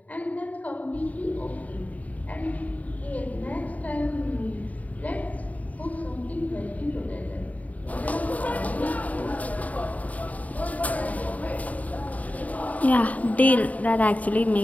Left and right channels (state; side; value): late; right; 0.072 ms